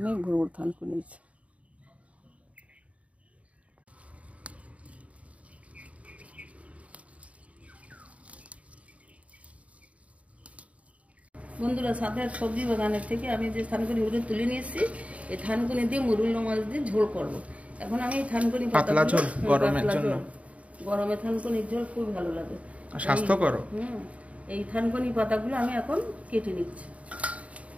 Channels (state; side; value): late; left; 0.066 ms